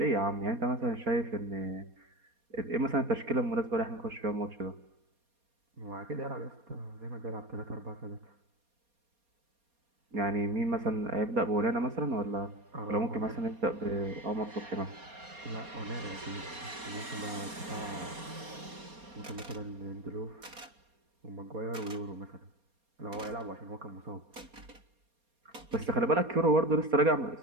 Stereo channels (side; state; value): left; late; 4.2 ms